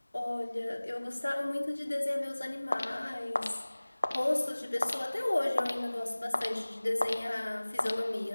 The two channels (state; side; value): inverted; both; correlation -1.00